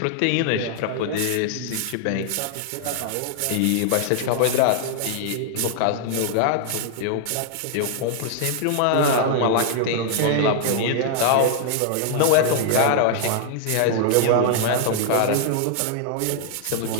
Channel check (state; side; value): different; both; correlation -0.01